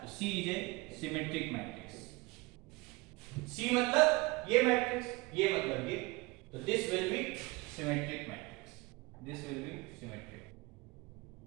तो सी इज ए सिमेट्रिक मैट्रिक्स। सी मतलब ये मैट्रिक्स, ये मतलब ये, तो this will be symmetric matrix, this will be symmetric.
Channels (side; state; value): left; quieter; 23.8 dB